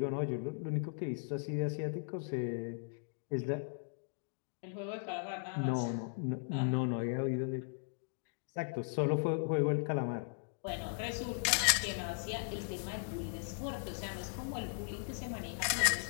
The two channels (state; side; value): silent; right; digital silence